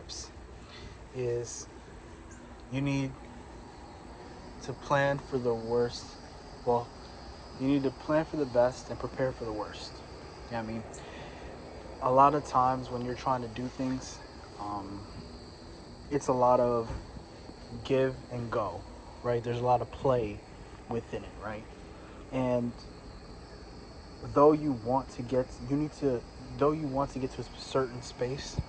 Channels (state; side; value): identical; both; correlation 1.00